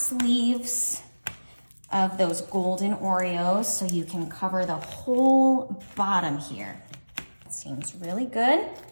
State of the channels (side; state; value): both; inverted; correlation -1.00